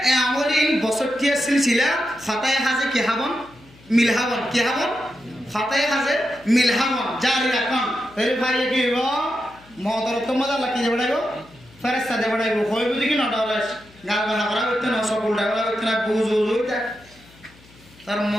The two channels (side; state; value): left; noise; hum, 26 dB below the sound